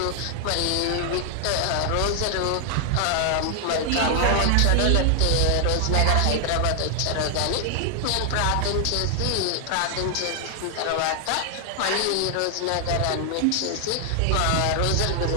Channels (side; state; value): both; different; correlation 0.00